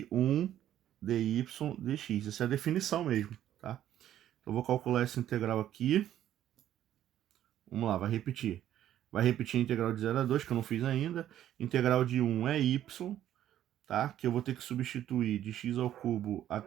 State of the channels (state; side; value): quieter; left; 11.7 dB